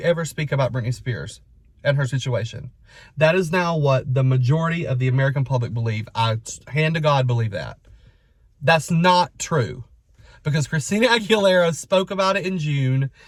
ever speak about Britney Spears and her situation. That is now what the majority of the American public believe. I, hand to God, believe that. That's not true, because Christina Aguilera spoke about it in June,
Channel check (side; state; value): both; identical; correlation 1.00